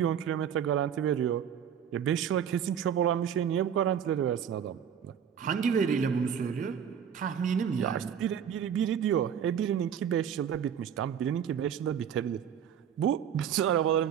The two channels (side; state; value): left; quieter; 8.5 dB